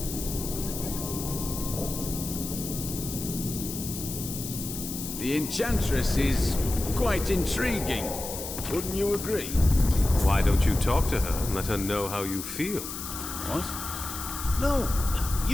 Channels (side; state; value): left; noise; hiss, 7 dB below the sound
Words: The Enchantress is quite intriguing. Wouldn't you agree? Why don't you talk to her and let her know how you feel? What? No,